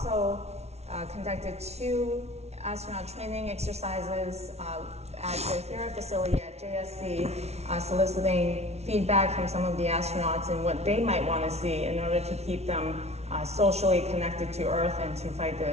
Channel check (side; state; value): left; late; 0.31 ms